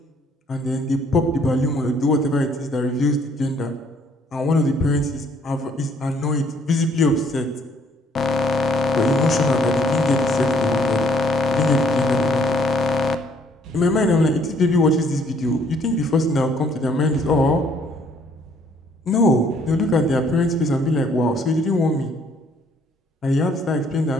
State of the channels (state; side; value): normal; both; correlation 0.64